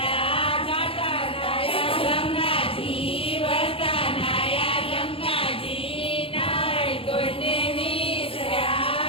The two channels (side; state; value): right; late; 0.27 ms